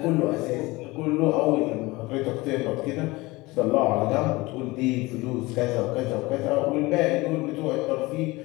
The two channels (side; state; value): right; quieter; 21.8 dB